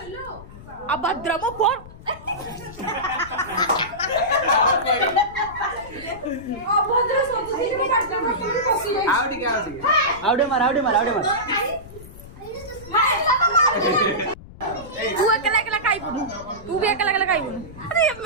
तू अकेला अकेला खाई पुनु तू भी अकेला अकेला खाई पुनु अरे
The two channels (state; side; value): noise; left; rumble, 17 dB below the sound